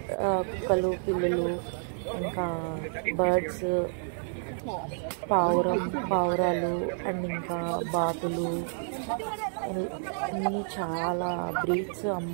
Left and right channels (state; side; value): silent; left; digital silence